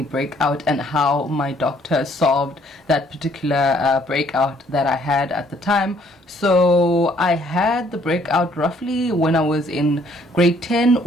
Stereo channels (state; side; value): normal; both; correlation 0.63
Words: breakout and how my doctor solved that particular breakout that I had at the time. So I had the breakout roughly when I was in grade 10